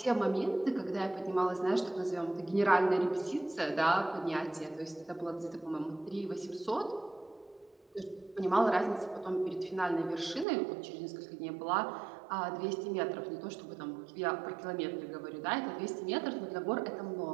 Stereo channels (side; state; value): left; drops out; at 10.5 s